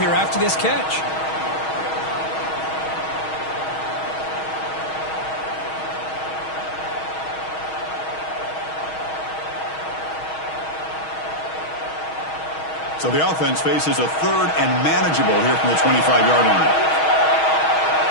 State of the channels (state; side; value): late; right; 6.3 ms